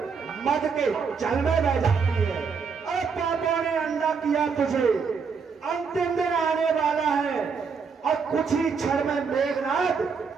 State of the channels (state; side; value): quieter; left; 5.6 dB